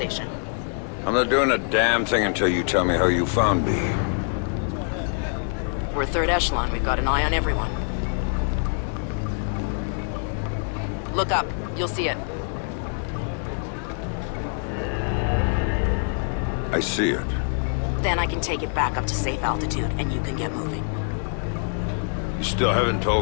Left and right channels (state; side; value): silent; right; 59 dB below the other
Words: I'm not doing a damn thing until you tell me how you found me. We're Third Echelon. We've got an eye on everyone. Look up. You'll see it. I see it. Then I can take it back up to safe altitude, and you can get moving. You still haven't